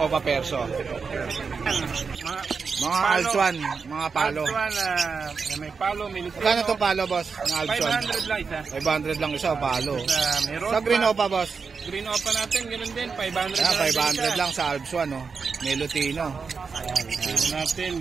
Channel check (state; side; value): quieter; left; 5.2 dB